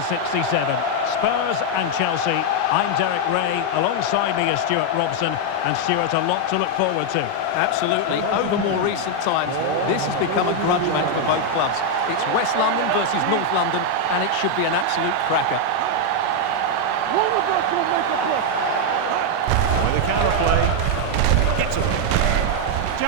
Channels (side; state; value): both; different; correlation 0.00